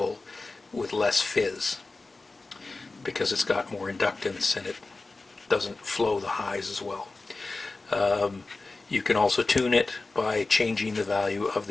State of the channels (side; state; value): right; quieter; 3.5 dB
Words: with less fizz, because it's got more inductance and it doesn't flow the highs as well. You can also tune it by changing the value of